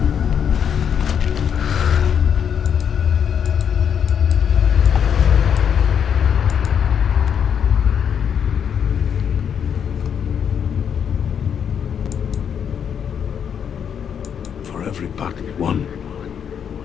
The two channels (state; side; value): quieter; right; 8.0 dB